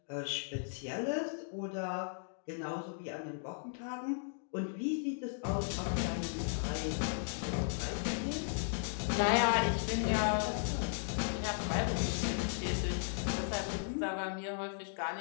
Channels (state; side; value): silent; right; digital silence